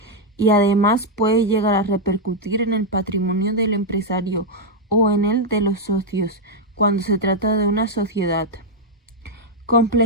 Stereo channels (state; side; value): normal; both; correlation -0.01